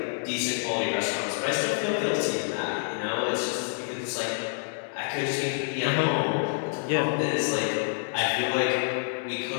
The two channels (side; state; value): right; silent; 60 dB below the other